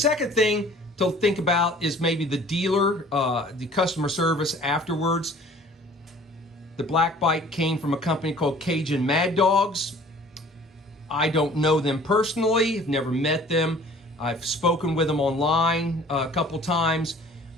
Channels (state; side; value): normal; both; correlation 0.50